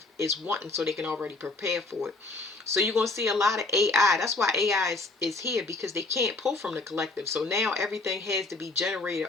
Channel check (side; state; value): right; quieter; 3.3 dB